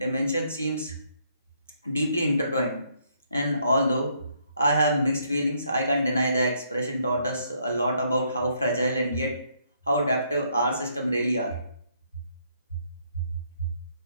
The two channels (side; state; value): both; inverted; correlation -0.71